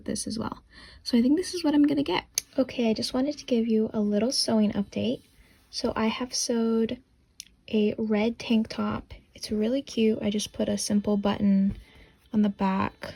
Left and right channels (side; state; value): both; identical; correlation 1.00